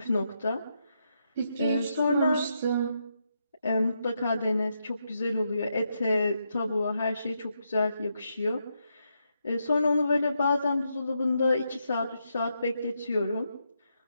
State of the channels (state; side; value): inverted; both; correlation -0.82